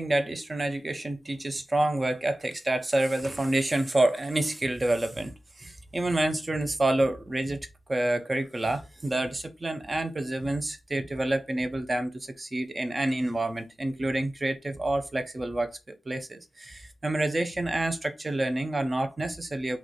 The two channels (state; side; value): normal; both; correlation 0.96